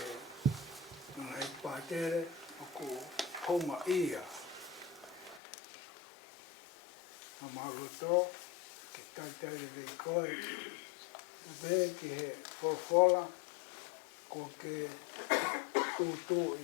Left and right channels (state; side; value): drops out; right; at 5.4 s